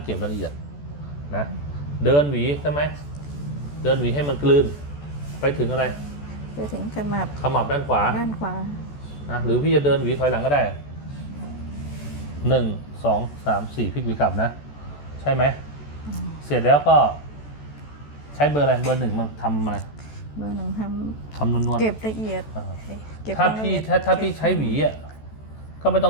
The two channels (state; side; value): late; right; 14 ms